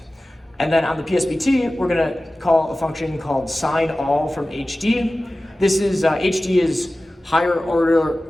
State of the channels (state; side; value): normal; both; correlation 0.96